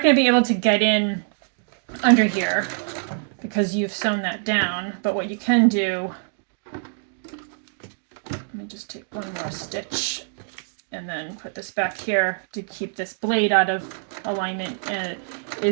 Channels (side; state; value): left; silent; digital silence